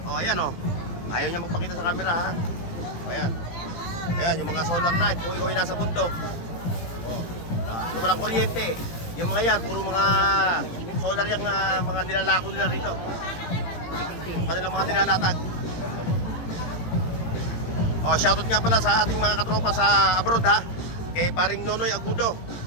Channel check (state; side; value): late; right; 18 ms